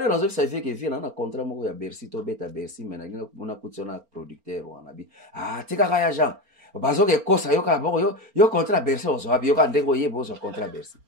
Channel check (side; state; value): left; late; 4.4 ms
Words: raison ça fait que vient un contrat moko ya Bercy to beta Bercy mais na ngina kutiona producteur wana bi tika kaya Jean bazo ke kosa yo ka boko yo contrat Bercy ozo abi yo ka ndeko yebo ozo contrat Bercy